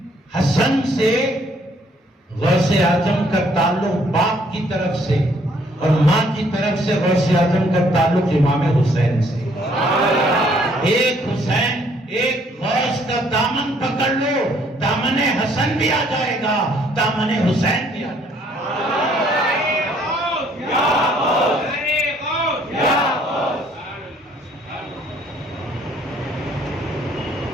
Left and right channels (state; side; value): normal; both; correlation 0.64